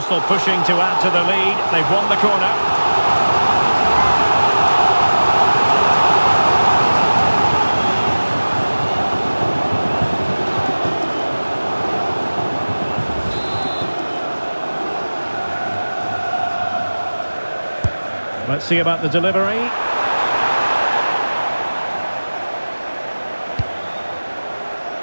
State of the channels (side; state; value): both; inverted; correlation -1.00